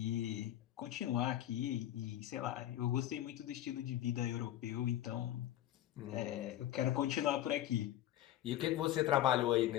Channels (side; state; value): right; quieter; 13.0 dB